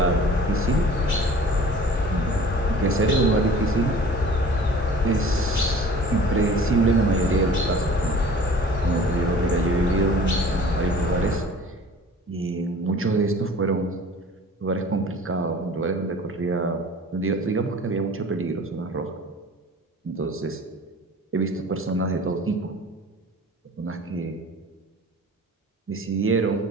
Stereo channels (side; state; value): both; normal; correlation 0.45